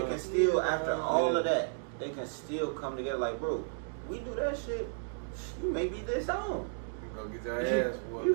can still, after all Yeah. of that, they can still come together like, bro, we do that shit, you may be disowned. Go get your ass whooped. You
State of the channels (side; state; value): left; silent; digital silence